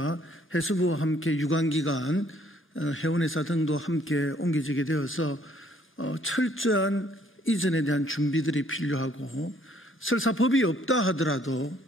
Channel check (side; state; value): both; normal; correlation 0.63